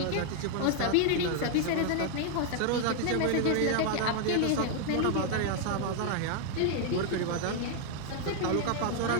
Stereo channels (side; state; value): both; different; correlation 0.00